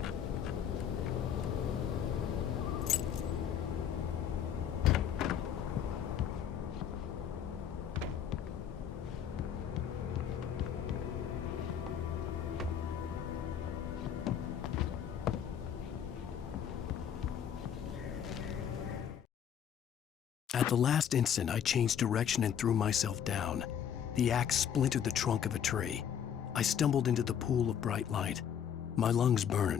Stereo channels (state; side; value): quieter; right; 8.8 dB